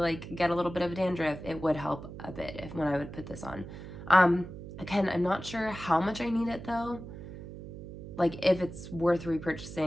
get a little bit of dandruff, it would help a bit when I would put this on. Again, I'm not sure how much I need it though. Like if it's worth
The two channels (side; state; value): right; noise; hum, 12 dB below the sound